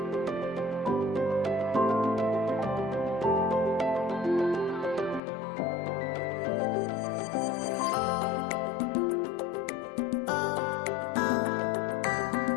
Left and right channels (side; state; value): right; drops out; at 5.2 s